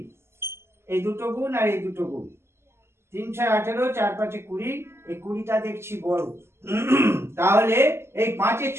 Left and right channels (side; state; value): left; late; 0.12 ms